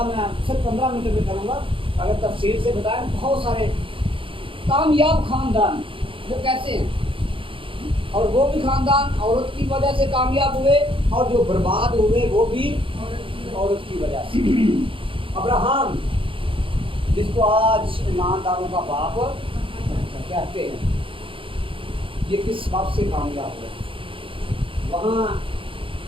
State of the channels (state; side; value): late; left; 0.25 ms